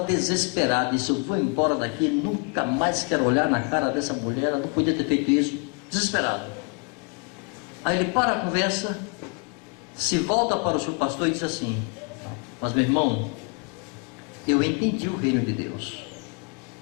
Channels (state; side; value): quieter; right; 34.8 dB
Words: desesperado, disse: eu vou embora daqui, nunca mais quero olhar na cara dessa mulher, ela não podia ter feito isso. Desesperado. Aí ele para a conversa, se volta para o seu pastor e diz assim: mas meu irmão, eu entendi o reino de Deus,